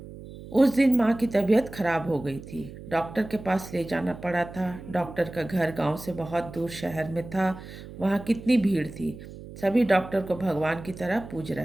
उस दिन माँ की तबीयत खराब हो गई थी, डॉक्टर के पास ले जाना पड़ा था। डॉक्टर का घर गांव से बहुत दूर शहर में था। वहाँ कितनी भीड़ थी, सभी डॉक्टर को भगवान की तरह पूज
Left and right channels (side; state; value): right; noise; hum, 14 dB below the sound